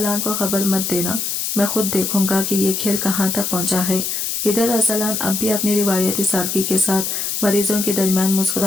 को खबर मत देना, मैं खुद देखूंगा कि ये खेल कहाँ तक पहुंचा है। इधर अरसलान अब भी अपनी रिवायती सादगी के साथ मरीजों के दरमियान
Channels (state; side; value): noise; left; hiss, 2 dB below the sound